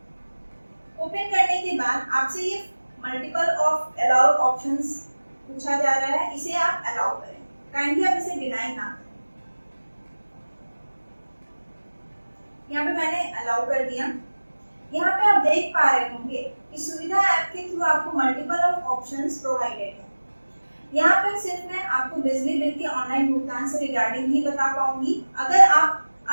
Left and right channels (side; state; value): both; inverted; correlation -1.00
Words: ओपन करने के बाद आपसे ये मल्टीपल ऑफ अलाउ ऑप्शंस पूछा जा रहा है, इसे आप अलाउ करें। काइंडली आप इसे डिनाई ना करें। यहाँ पे मैंने अलाउ कर दिया। यहाँ पे आप देख पा रहे होंगे कि सुविधा ऐप के थ्रू आपको मल्टीपल ऑफ ऑप्शंस प्रोवाइडेड है। यहाँ पर सिर्फ मैं आपको बिजली बिल के ऑनलाइन भुगतान से रिगार्डिंग ही बता पाऊंगी। अगर आप